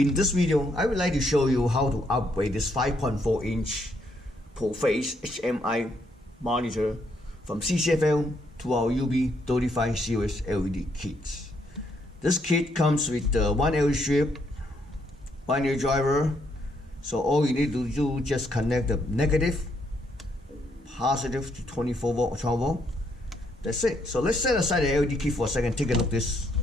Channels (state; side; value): normal; both; correlation 0.73